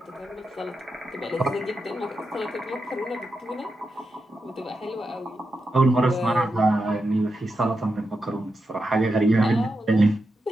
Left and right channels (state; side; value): normal; both; correlation 0.87